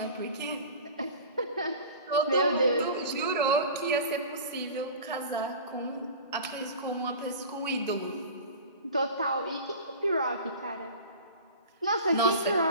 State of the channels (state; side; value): inverted; both; correlation -0.37